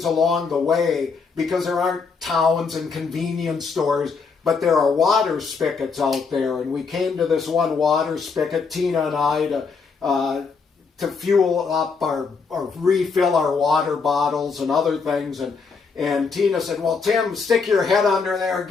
along the way, because there aren't towns and convenience stores, but there are water spigots out there. And we came to this one water spigot, Tina and I, to fuel up or refill our water bottles and other things. And Tina said, well, Tim, stick your head under there,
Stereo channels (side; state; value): right; quieter; 5.0 dB